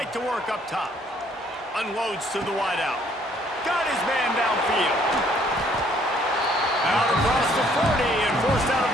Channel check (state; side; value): normal; both; correlation 0.63